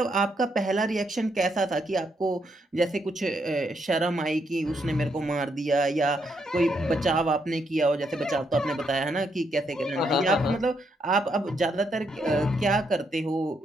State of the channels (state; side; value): normal; both; correlation 0.77